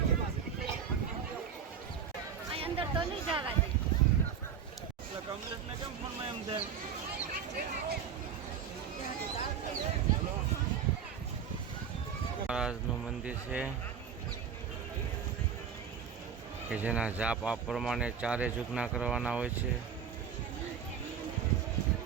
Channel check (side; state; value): left; quieter; 7.3 dB